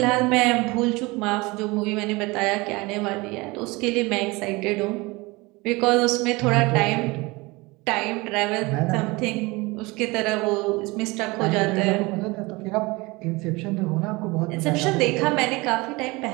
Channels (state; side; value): quieter; left; 23.8 dB